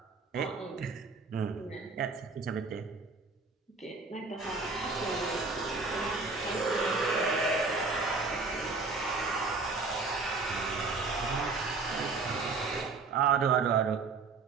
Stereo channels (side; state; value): left; quieter; 4.1 dB